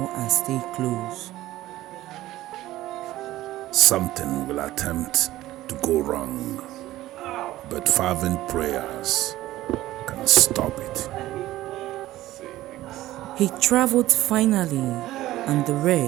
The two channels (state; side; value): quieter; left; 15.7 dB